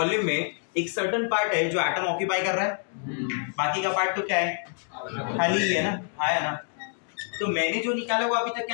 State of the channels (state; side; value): silent; right; 58 dB below the other